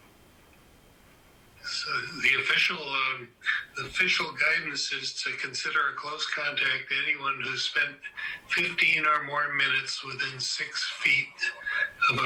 So the official guidance is to consider a close contact anyone who spent 15 or more minutes within 6 feet of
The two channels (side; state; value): both; identical; correlation 1.00